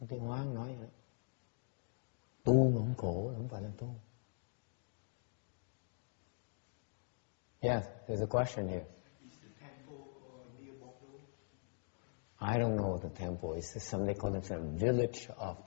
Cái nói tu mà không khổ không phải là tu. Yeah, there's a question here. Is the temple near Bordeaux? I don't know the temple. It's something called the village of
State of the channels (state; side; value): silent; right; digital silence